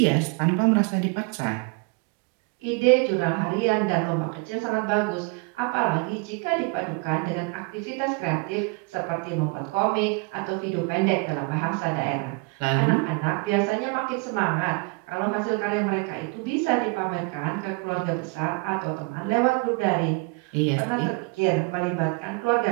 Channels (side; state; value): left; quieter; 29.4 dB